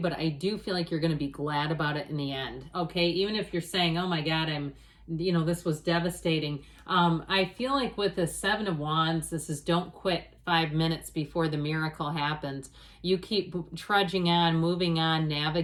I do feel like you're going to be glad about it in the end. Okay, even if you're saying, oh my God, this was devastating. I feel like with the Seven of Wands, this is don't quit 5 minutes before the miracle happens. You keep trudging on, moving on,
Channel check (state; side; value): identical; both; correlation 1.00